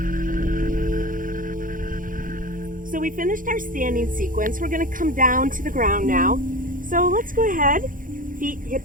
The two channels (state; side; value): late; left; 0.39 ms